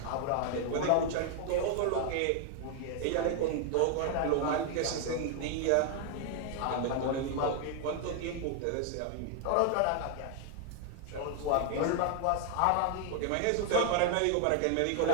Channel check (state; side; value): different; both; correlation 0.00